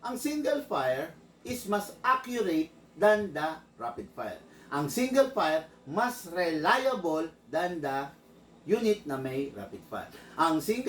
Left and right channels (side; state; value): both; identical; correlation 1.00